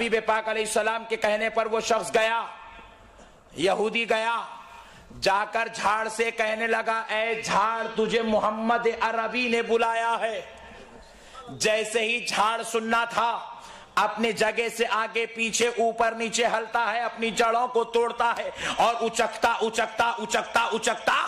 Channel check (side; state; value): both; identical; correlation 1.00